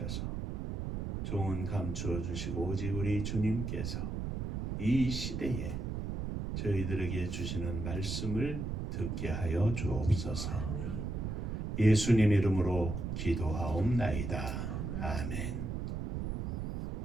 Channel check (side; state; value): right; noise; rumble, 3 dB below the sound